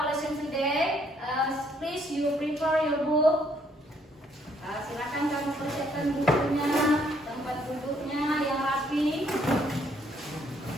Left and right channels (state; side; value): normal; both; correlation 0.68